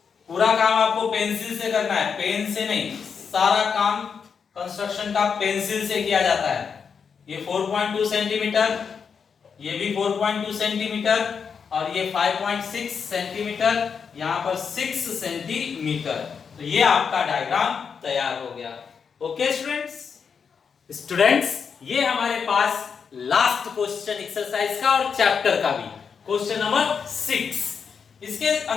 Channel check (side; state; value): right; quieter; 6.3 dB